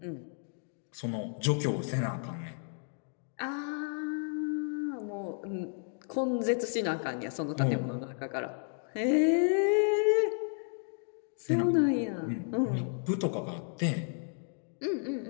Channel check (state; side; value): silent; right; 56 dB below the other